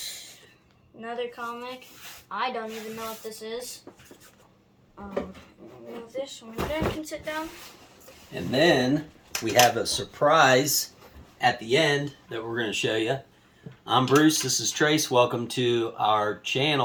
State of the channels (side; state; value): both; identical; correlation 1.00